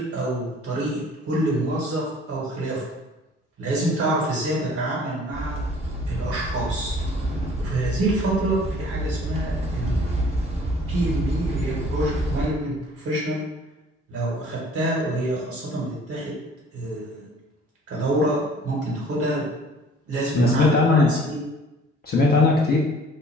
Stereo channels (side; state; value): both; normal; correlation 0.52